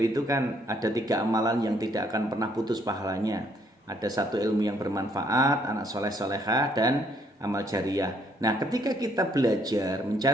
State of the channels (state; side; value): normal; both; correlation 0.67